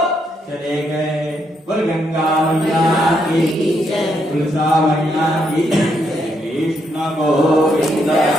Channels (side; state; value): both; normal; correlation 0.77